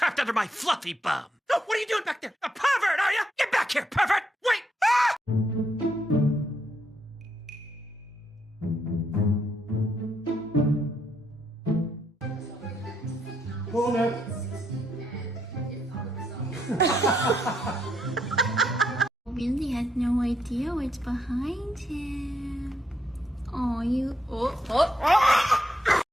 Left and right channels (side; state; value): both; normal; correlation 0.77